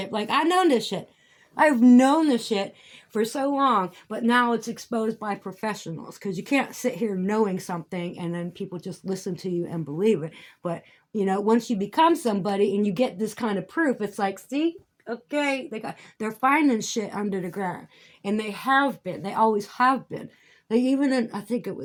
Like, I know this shit. I've known this shit for so long, but now it's exposed by professionals because you can't sit here knowing something and then people just listen to you and believe it. But, you know, once you become somebody and you get this kind of proof, it's like, see, okay, they're finding shit under the ground. And they have been. They always have been. They even in, I think it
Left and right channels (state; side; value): identical; both; correlation 1.00